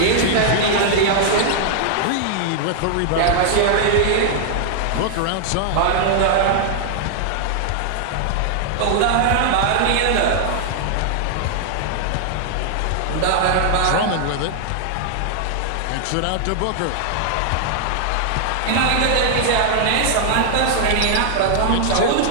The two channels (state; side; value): different; both; correlation 0.00